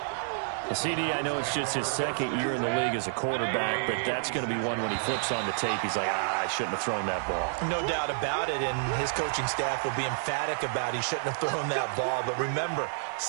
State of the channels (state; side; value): silent; left; digital silence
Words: CD, I know it's just his 2nd year in the league as a quarterback, but that's going to be one when he flips on the tape. He's like, I shouldn't have thrown that ball. No doubt about it, and his coaching staff will be emphatic about he shouldn't have thrown that ball. But remember,